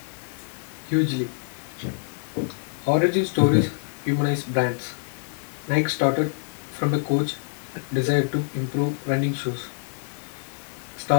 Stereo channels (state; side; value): silent; right; 57 dB below the other